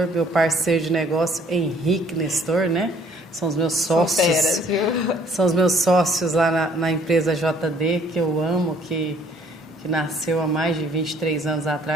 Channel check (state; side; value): normal; both; correlation 0.60